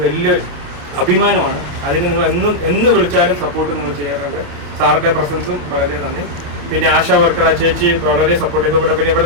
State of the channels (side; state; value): left; late; 28 ms